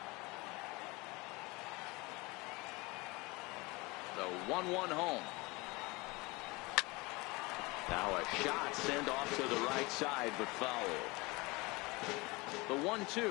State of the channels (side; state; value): right; quieter; 24.6 dB